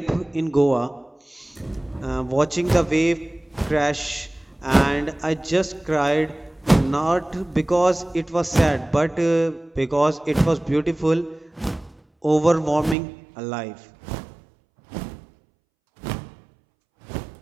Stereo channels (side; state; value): left; drops out; at 13.0 s